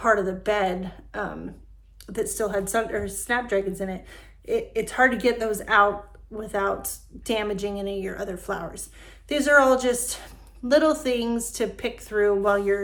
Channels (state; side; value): identical; both; correlation 1.00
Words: of the bed that still had snapdragons in it. It's hard to get those out without damaging any of your other flowers. These are all just little things to pick through while